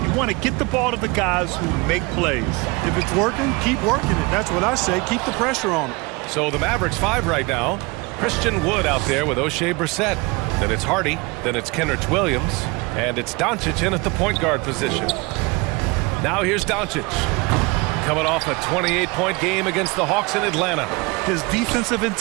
You want to get the ball to the guys who make plays. If it's working, keep working it. That's what I say. Keep the pressure on them. So the Mavericks 5 right now. Christian Wood out there with O'Shea Brissett. Then it's Hardy. Then it's Kenrich Williams. And it's Doncic in at the point guard position. Now here's Doncic. Coming off a 28-point game against the Hawks in Atlanta. His defensive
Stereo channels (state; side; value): quieter; left; 26.0 dB